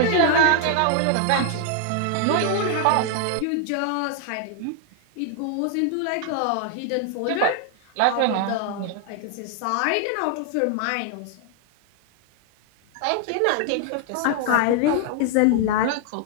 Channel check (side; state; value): both; different; correlation 0.00